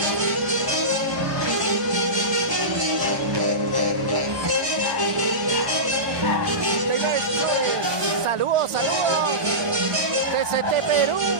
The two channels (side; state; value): left; late; 1.2 ms